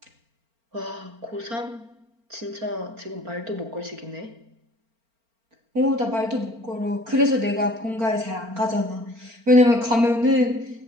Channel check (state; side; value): late; left; 4.4 ms